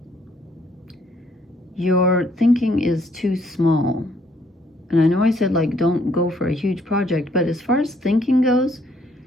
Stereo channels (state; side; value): normal; both; correlation 0.67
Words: Your thinking is too small. And I know I said, like, don't go for a huge project, but as far as thinking goes,